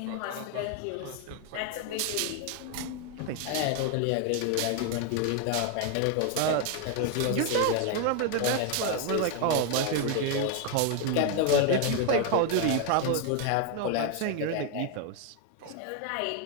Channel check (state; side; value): different; both; correlation 0.01